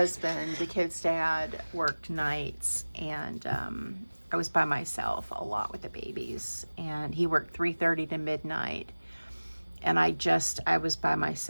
the kid's dad, worked nights, and I was by myself a lot with the babies, and he worked 3:30 to midnight. And I was by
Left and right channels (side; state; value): both; inverted; correlation -1.00